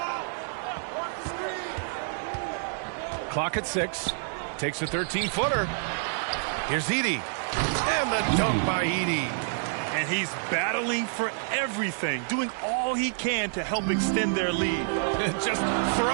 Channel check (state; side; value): silent; left; 59 dB below the other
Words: Clock at 6. Takes a 13-footer. Here's Edey. And the dunk by Edey. And he's battling for everything, doing all he can to help extend their lead. Just